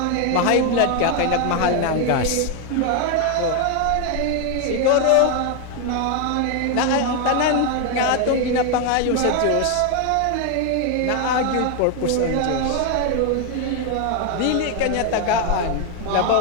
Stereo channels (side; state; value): both; different; correlation 0.01